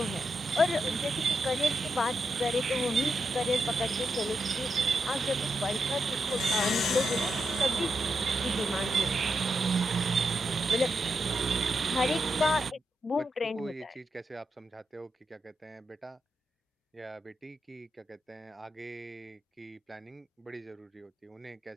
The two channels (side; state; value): both; normal; correlation 0.85